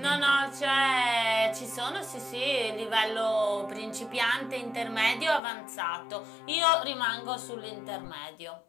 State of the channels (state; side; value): drops out; right; at 5.4 s